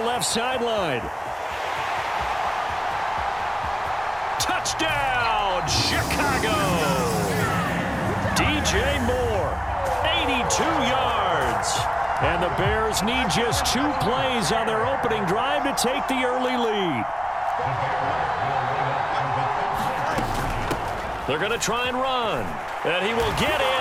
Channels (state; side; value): identical; both; correlation 1.00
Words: left sideline. Touchdown, Chicago! DJ Moore, 82 yards. And the Bears need just 2 plays on their opening drive to take the early lead. They're going to try and run. And he will get